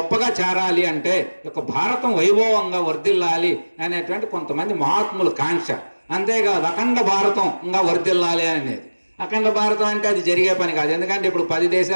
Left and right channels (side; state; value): both; inverted; correlation -1.00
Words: చేరాలి అంటే ఒక భారతం వైభవంగా వర్ధిల్లాలి అనేటువంటి కొంతమంది మహాత్ముల కాంక్ష. అంతేకాదు అఖండ భారతం ఇంకా వర్ధిల్లాలి అనేది. అఖండ భారతం అంటే అది జరిగే పని కాదు. ఎందుకంటే ఇప్పుడు 10